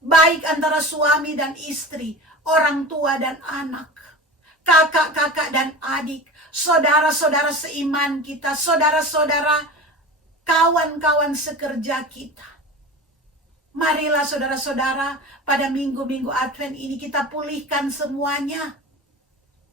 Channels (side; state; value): both; normal; correlation 0.33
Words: Baik antara suami dan istri, orang tua dan anak, kakak-kakak dan adik, saudara-saudara seiman kita, saudara-saudara, kawan-kawan sekerja kita. Marilah saudara-saudara, pada minggu-minggu Advent ini kita pulihkan semuanya.